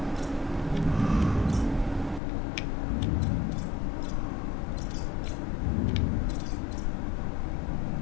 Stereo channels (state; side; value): drops out; right; at 2.2 s